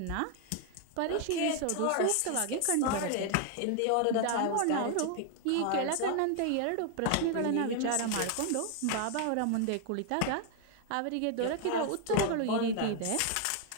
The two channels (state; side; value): different; both; correlation 0.00